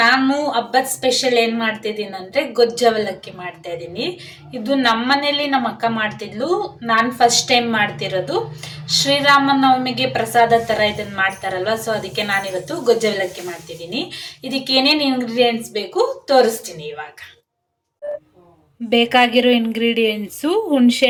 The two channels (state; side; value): identical; both; correlation 1.00